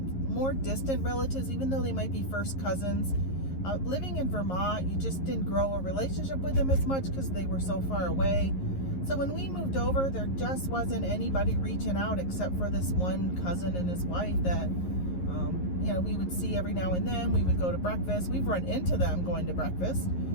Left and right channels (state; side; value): late; right; 11 ms